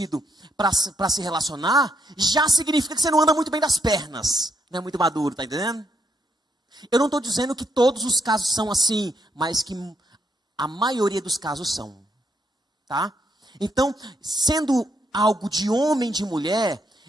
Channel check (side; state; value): both; normal; correlation 0.76